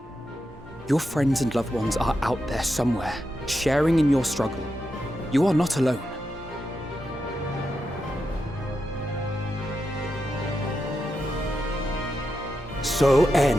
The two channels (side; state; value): both; normal; correlation 0.87